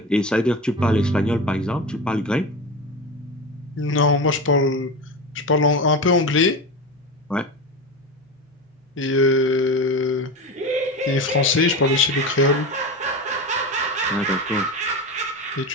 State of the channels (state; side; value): normal; both; correlation 0.24